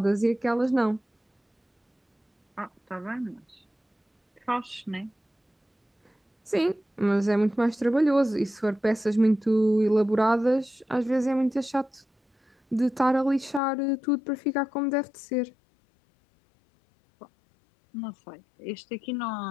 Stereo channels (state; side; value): drops out; right; at 13.6 s